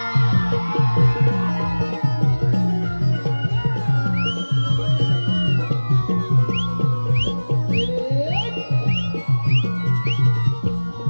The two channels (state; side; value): inverted; both; correlation -1.00